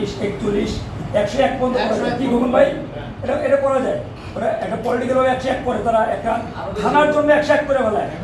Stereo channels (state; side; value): identical; both; correlation 1.00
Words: 41, 101 পর্যন্ত কি বলুন ভাই, এটা করা যায়। ওরা একটা পলিটিক্যাল ভাবে 101 করে, তারা একটা থানার জন্য 101 করে ফেলায়,